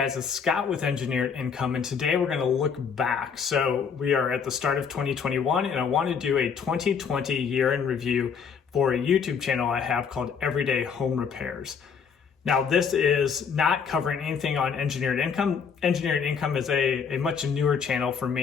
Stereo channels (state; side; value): quieter; right; 6.4 dB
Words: It's Scott with Engineered Income, and today we're going to look back. So we are at the start of 2021, and I want to do a 2020 year in review for a YouTube channel I have called Everyday Home Repairs. Now, this is not covering anything on Engineered Income. Engineered Income is a much newer channel for